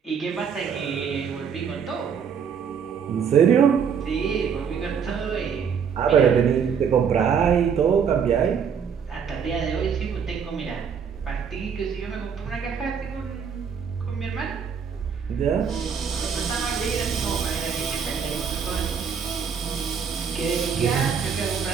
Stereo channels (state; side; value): quieter; left; 6.9 dB